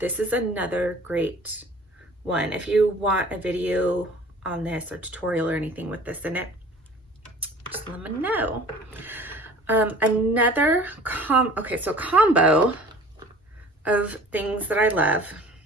is another great one. If you want a video on this or tutorial or anything with this in it, just let me know. Another combo of things that I love.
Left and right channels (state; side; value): normal; both; correlation 0.47